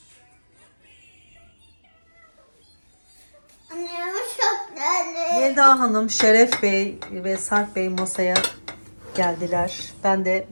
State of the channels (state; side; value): inverted; both; correlation -1.00